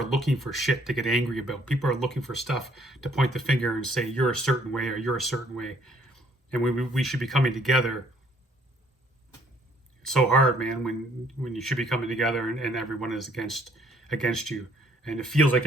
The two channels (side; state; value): both; normal; correlation 0.63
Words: looking for shit to get angry about. People are looking for stuff to point the finger and say, you're a certain way or you're a certain way. And we should be coming together. It's so hard, man, when you should be coming together and everyone is against you. And it feels like